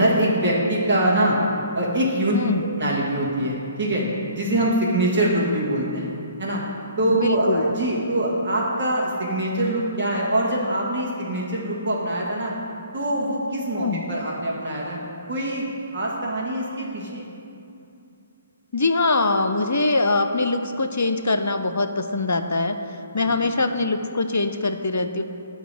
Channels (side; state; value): both; inverted; correlation -0.56